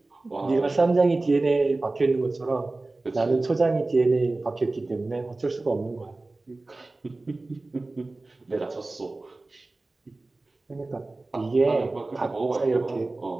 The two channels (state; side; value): quieter; left; 3.1 dB